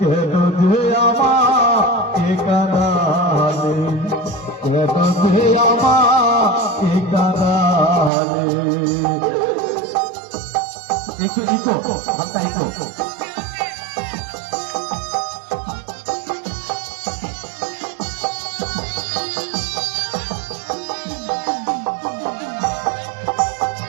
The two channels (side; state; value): left; drops out; at 8.1 s